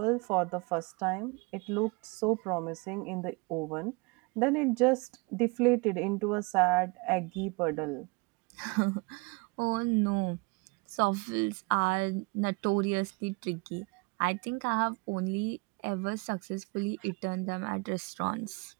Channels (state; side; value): quieter; left; 28.0 dB